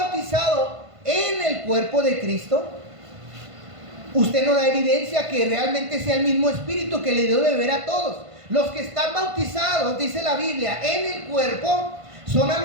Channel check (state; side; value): late; left; 1.5 ms